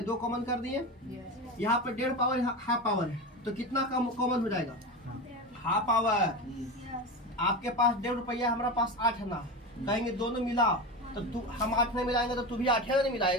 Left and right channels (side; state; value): both; normal; correlation 0.23